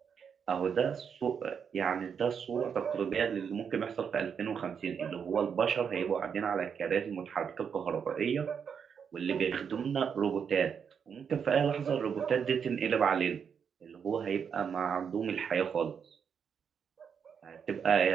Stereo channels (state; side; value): quieter; left; 7.0 dB